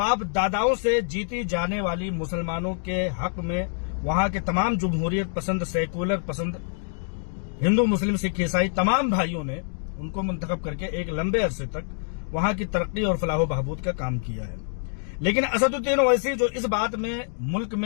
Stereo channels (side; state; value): right; silent; 56 dB below the other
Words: दादाओं से जीती जाने वाली मुसलमानों के हक में वहां के तमाम जमहूरियत पसंद, सेकुलर पसंद, हिंदू मुस्लिम सिख ईसाई तमाम भाइयों ने उनको मुंतखब करके एक लंबे अरसे तक वहां की तरक्की और फलाह बहबूद का काम किया है। लेकिन असदुद्दीन ओवैसी जो इस बात में मुल्क